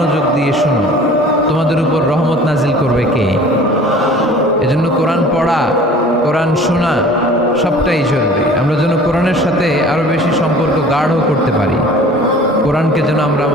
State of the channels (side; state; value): both; normal; correlation 0.46